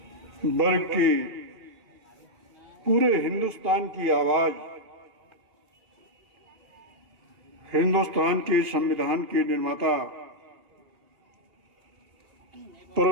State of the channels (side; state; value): left; late; 2.8 ms